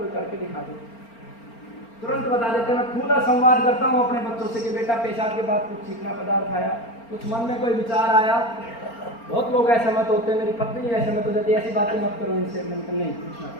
करके दिखा दे, तुरंत बता देते। मैं खुला संवाद करता हूँ अपने बच्चों से कि बेटा पेशाब के बाद कुछ चीखना पदार्थ आया, कुछ मन में कोई विचार आया। बहुत लोग असहमत होते हैं, मेरी पत्नी असहमत हो जाती है, ऐसी बातें मत करो इनसे। मैंने नहीं, पूछना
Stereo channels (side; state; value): right; late; 4.4 ms